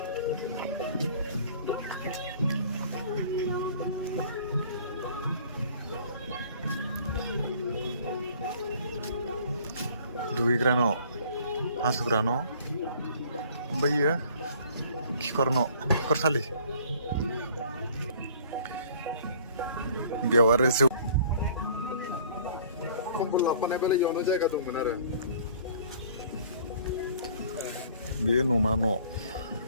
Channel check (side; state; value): both; inverted; correlation -0.53